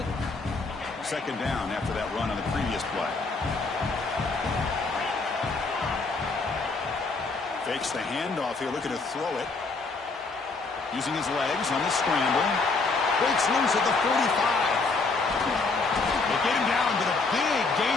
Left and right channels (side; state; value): right; quieter; 3.9 dB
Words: it. Second down after that run on the previous play. Fakes the handoff here, looking to throw it. Using his legs on the scramble. Breaks loose at the 45. They get him down to the big